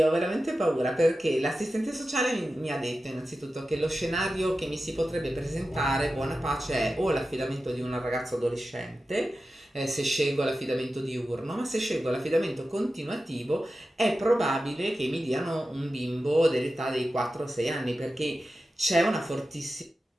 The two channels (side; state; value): both; normal; correlation 0.93